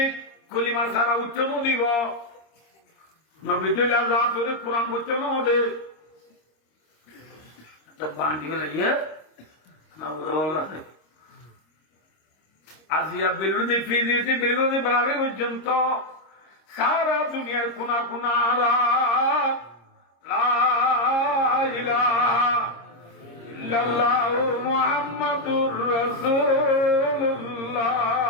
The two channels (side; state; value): right; late; 26 ms